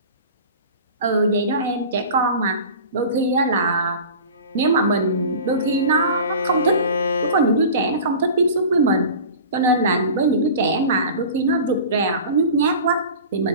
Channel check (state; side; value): inverted; both; correlation -0.37